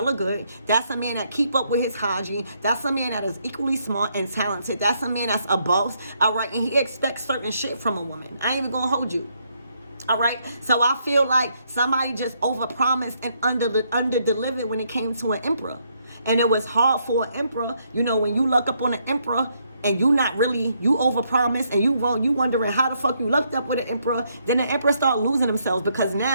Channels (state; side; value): inverted; both; correlation -0.74